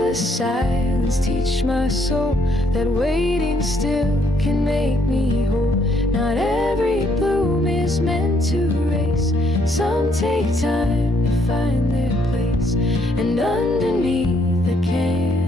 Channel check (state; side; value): normal; both; correlation 0.69